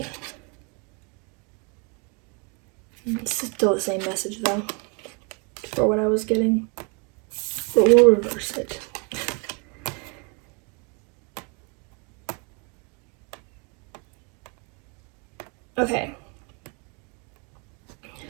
It's still the same message, though, for what I was getting. But we'll reverse it. Okay.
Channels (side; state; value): left; quieter; 34.1 dB